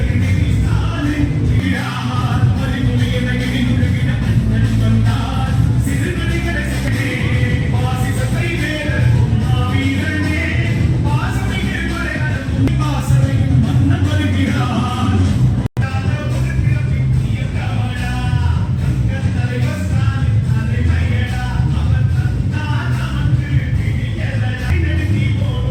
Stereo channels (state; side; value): identical; both; correlation 1.00